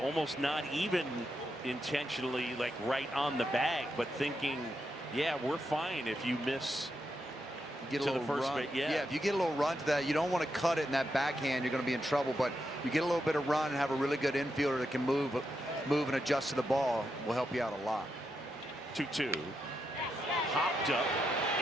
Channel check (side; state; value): both; normal; correlation 0.84